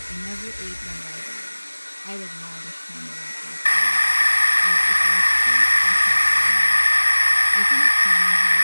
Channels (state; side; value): inverted; both; correlation -1.00